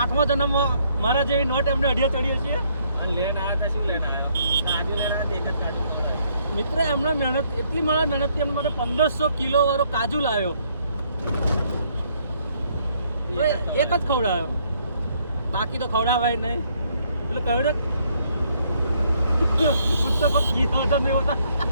8મા જન્મમાં મારા જેવી નોટ એમને અઢિયા ચડ્યો છે. લેન આવ્યા હતા. શું લેન આવ્યો? મિત્ર એમણે મહેનત એટલી મહેનતથી એમને મને 1500 કિલો વાળો કાજુ લાવ્યો. એક જ ખવડાવ્યો. બાકી તો ખવડાવાય નહીં. એટલે કહ્યું ને પુસ્તકો ઘી વજન નહીં હોતા.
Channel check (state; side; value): inverted; both; correlation -0.69